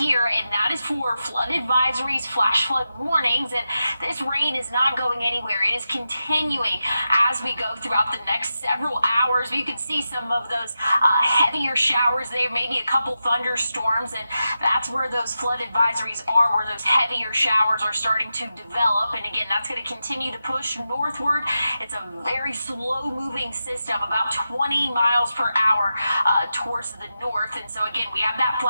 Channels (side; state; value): both; inverted; correlation -0.90